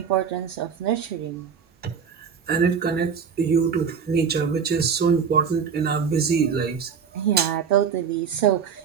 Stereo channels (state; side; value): quieter; left; 6.7 dB